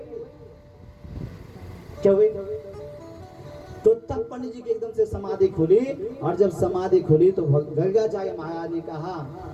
क्या हुई। तो तब पंडित जी की एकदम से समाधि खुली। और जब समाधि खुली तो गर्गाचार्य महाराज ने कहा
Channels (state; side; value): identical; both; correlation 1.00